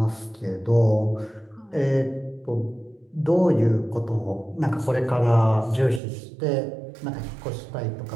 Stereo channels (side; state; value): left; drops out; at 6.0 s